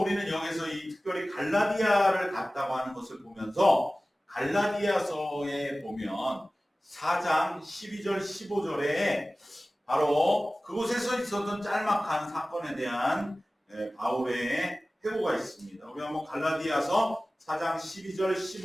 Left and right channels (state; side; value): normal; both; correlation 0.97